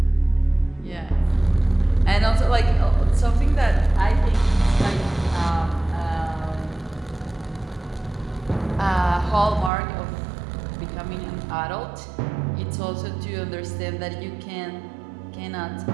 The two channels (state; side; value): drops out; left; at 9.7 s